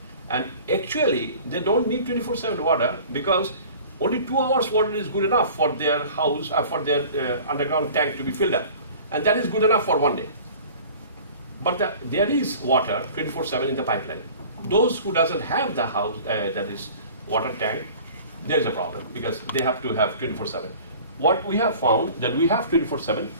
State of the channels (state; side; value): inverted; both; correlation -0.44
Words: And actually, they don't need 24/7 water because only 2 hours water is good enough for their house, for their underground tank to be filled up. And that is good enough for one day. But there is water 24/7 in the pipeline. Those who doesn't have the house, that is water tank, there's a problem because they have to have 24/7. What we have found that we have 24/7,